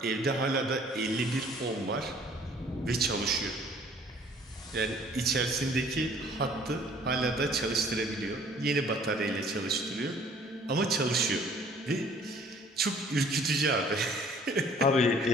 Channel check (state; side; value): normal; both; correlation 0.55